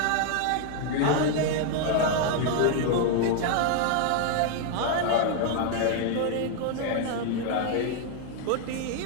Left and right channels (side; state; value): both; different; correlation 0.00